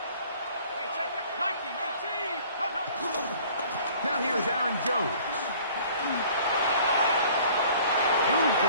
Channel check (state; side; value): inverted; both; correlation -0.52